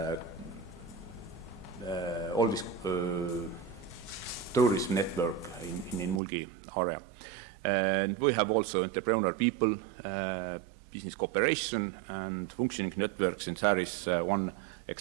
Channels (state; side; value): drops out; left; at 6.2 s